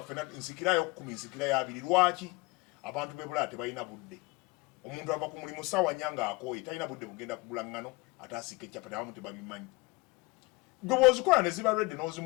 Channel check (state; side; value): quieter; right; 24.7 dB